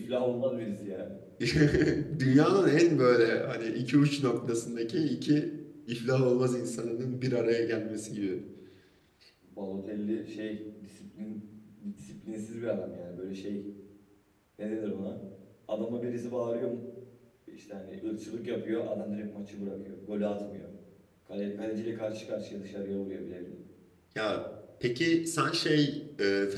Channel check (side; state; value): both; identical; correlation 1.00